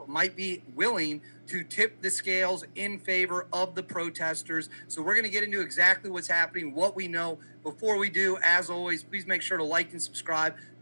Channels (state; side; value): inverted; both; correlation -1.00